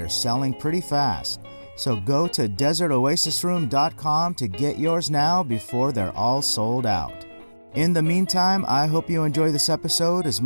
selling pretty fast, so go to desertoasisroom.com to get yours now before they're all sold out. In the meantime, I hope you enjoy this episode as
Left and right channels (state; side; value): inverted; both; correlation -1.00